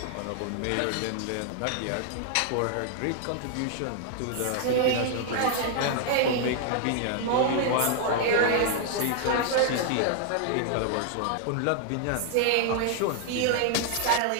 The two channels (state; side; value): different; both; correlation 0.00